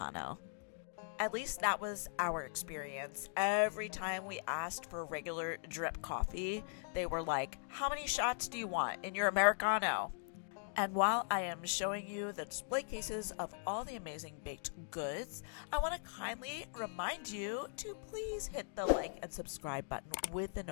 At least that was our experience. Every time we asked for regular drip coffee, they were like, "How many shots do you want in your Americano?" And while I am showing you the display cases of all the amazing baked goods, I want to kindly remind you to please hit the like and subscribe button with the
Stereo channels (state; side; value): silent; right; digital silence